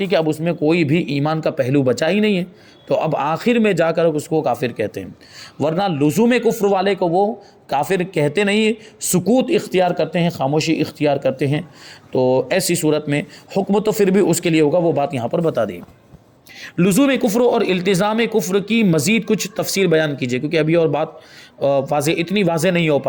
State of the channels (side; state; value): both; identical; correlation 1.00